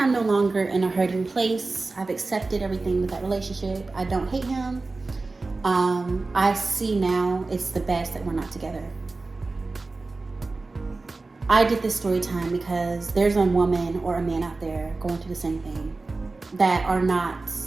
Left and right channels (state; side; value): quieter; left; 3.5 dB